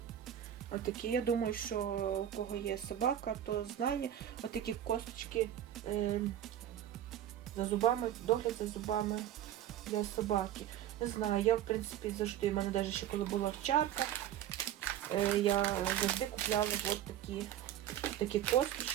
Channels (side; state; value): left; quieter; 11.3 dB